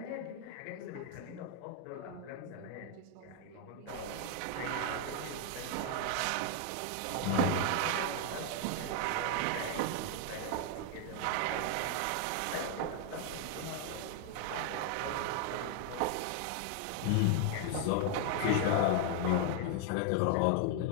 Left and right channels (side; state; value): both; different; correlation 0.00